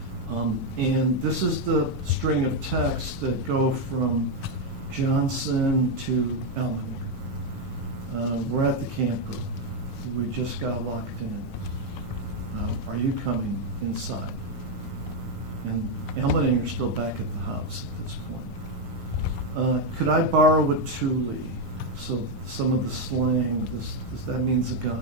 And this is the string of texts that go from Johnson to Elmeninger. We're at the camper. We just got locked in. Are you coming inside? And Elmeninger's still back at the house at this point. Could I borrow a Thule? So some of the slang, that means a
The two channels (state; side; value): normal; both; correlation 0.03